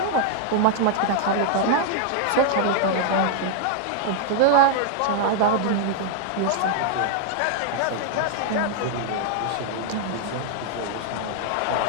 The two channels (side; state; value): both; different; correlation -0.01